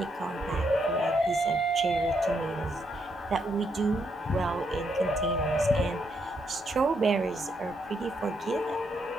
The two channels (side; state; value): both; normal; correlation 0.77